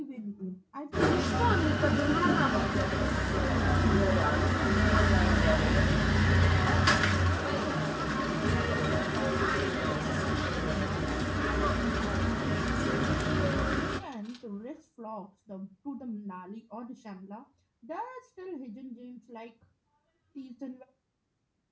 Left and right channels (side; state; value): both; identical; correlation 1.00